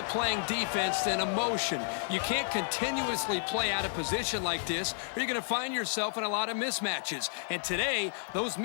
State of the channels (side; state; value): right; silent; digital silence